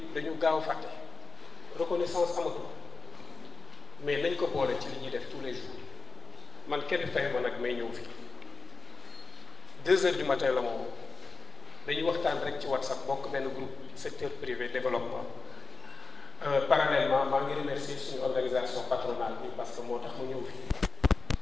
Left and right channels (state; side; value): quieter; right; 4.4 dB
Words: dañu gaaw fàtte reconnaissance amatul mais nañ ko boole ci li ñuy def tous les jours man kenn fay ma nag may ñëw fi 2 heures du matin la moom dañuy waxtaan rek ci WhatsApp bokk benn groupe secteur privé développement parallèlement maa ngi remercier suñu organisation patronale bi parce que moo tax mu ñëw fi